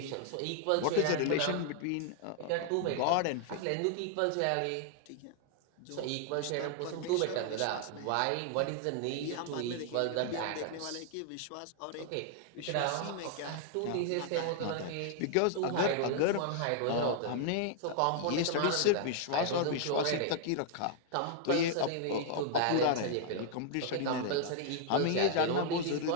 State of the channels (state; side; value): different; both; correlation 0.00